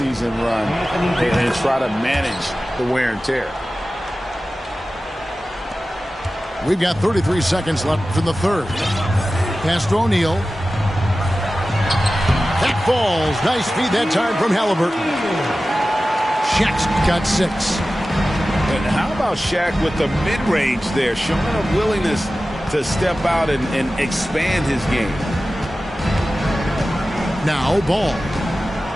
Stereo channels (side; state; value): both; normal; correlation 0.95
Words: run and try to manage the wear and tear. We've got 33 seconds left in the third. Pass to O'Neal. That falls. Nice feed that time from Halliburton. Shaq's got 6. And how about Shaq with the mid-range there, showing a willingness to step out and expand his game. Now Ball.